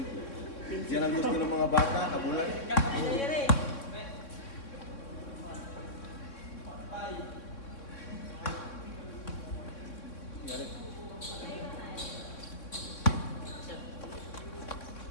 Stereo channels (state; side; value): late; right; 3.6 ms